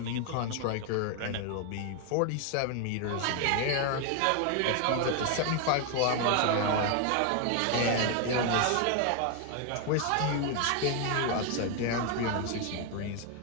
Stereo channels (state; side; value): different; both; correlation 0.01